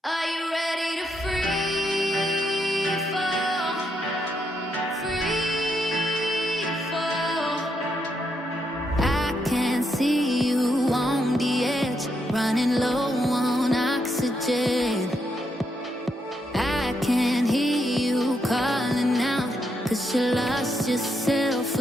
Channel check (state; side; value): normal; both; correlation 0.79